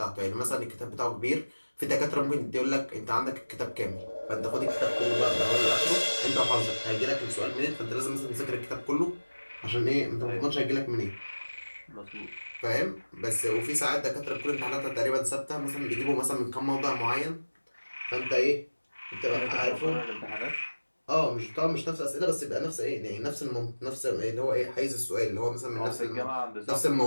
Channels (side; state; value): both; inverted; correlation -1.00